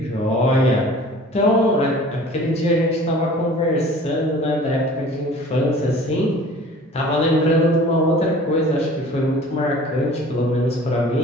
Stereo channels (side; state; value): both; normal; correlation 0.46